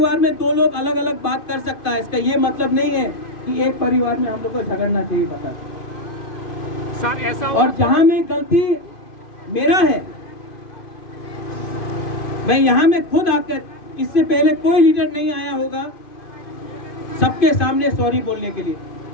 में दो लोग अलग अलग बात कर सकता है, इसका ये मतलब नहीं है कि एक परिवार में हम लोग को झगड़ना चाहिए। पता सर ऐसा और जहां में गलती मेरा है, मैं यहाँ में खुद आकर, इससे पहले कोई लीडर नहीं आया होगा सबके सामने सॉरी बोलने के लिए।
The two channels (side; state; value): right; late; 2.5 ms